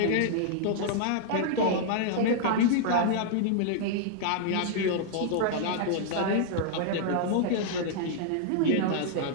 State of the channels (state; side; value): different; both; correlation -0.01